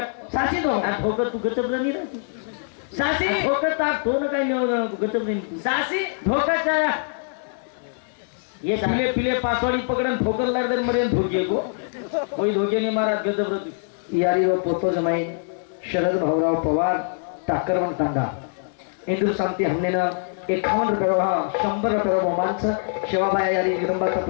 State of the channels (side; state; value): right; silent; digital silence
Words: सासी धोको धोकत तू गचब नाही राहती सासी धोकत तो काही गचब नाही सासी धोकाच्या ये पिले पासवाडी पकडन ठोकर लागदर मरे धोके को कोई धोके नहीं मारा गजब रहती यारी व पोतो जमाई शरद भाऊराव पवार टाकरवन तांडा इंदूर शांती हमने ना 51 रुपये 100 रुपये बहुमानचं शिवाबाई यारी जगदंबा